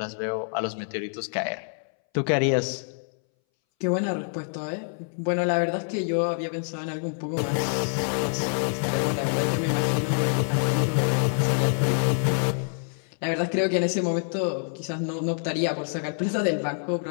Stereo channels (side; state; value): right; silent; 60 dB below the other